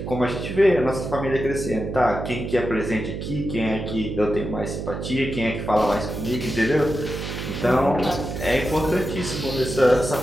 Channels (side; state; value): right; noise; hum, 6 dB below the sound